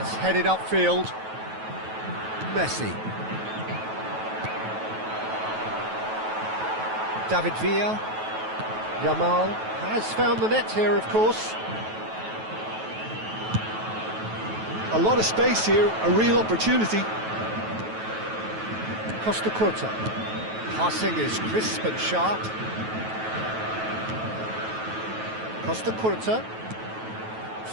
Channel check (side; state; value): left; late; 9.2 ms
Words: headed upfield. Messi. David Villa. Yamal has found the net here, of course. A lot of space here, a real opportunity. Costa Curta. Passing is crisp and sharp. Costa Curta.